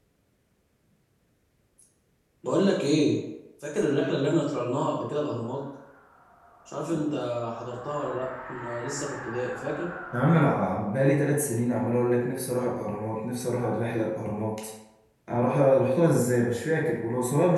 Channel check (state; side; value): identical; both; correlation 1.00